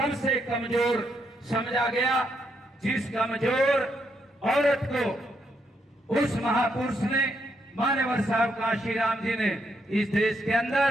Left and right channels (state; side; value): normal; both; correlation 0.77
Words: कमजोर समझा गया। जिस कमजोर औरत को उस महापुरुष ने, मान्यवर साहब काशीराम जी ने, इस देश के